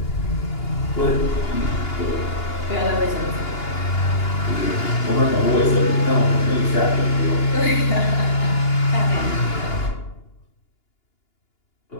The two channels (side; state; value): right; late; 2.8 ms